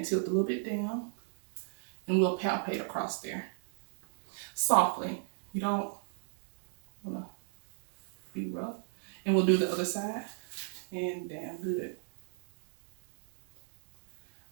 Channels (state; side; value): silent; left; 54 dB below the other